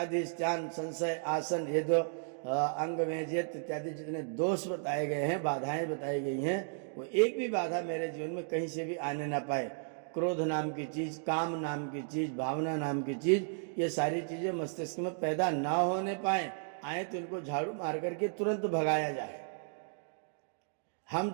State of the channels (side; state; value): left; silent; digital silence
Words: स्नान, संशय, आसन, ये जो अंग मेजियत इत्यादि जितने दोष बताए गए हैं, बाधाएं बताई गई हैं, वो एक भी बाधा मेरे जीवन में कहीं से भी आने ना पाए। क्रोध नाम की चीज, काम नाम की चीज, भावना नाम की चीज, ये सारी चीजें मस्तिष्क में पैदा ना होने पाए, आए तो इनको झाड़ू मार करके तुरंत भगाया जाए। हम